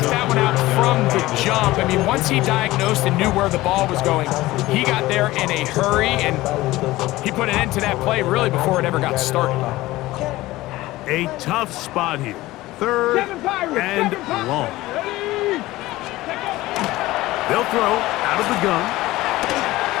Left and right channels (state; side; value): quieter; right; 17.9 dB